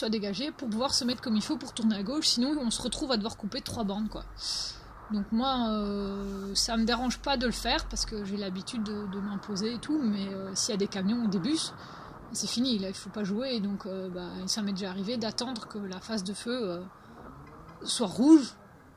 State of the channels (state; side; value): identical; both; correlation 1.00